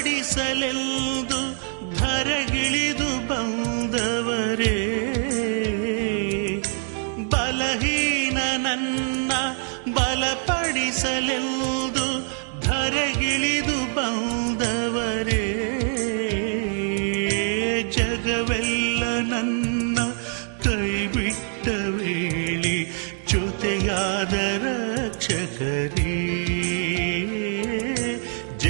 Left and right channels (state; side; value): silent; left; 55 dB below the other